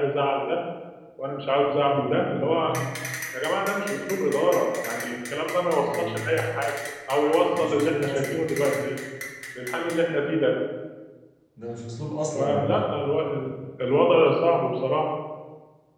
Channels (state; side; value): identical; both; correlation 1.00